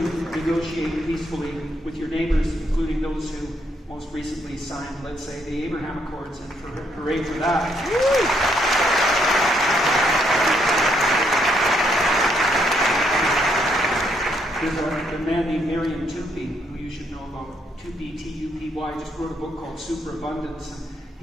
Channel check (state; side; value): normal; both; correlation 0.73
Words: negotiate peacefully with your neighbors, including those who most recently signed, let's say, the Abraham Accords, and hooray for that. There's a man named Miriam Tupy, who you should know about, Tupy, T-U-P-Y, just wrote a book called Superabundance, and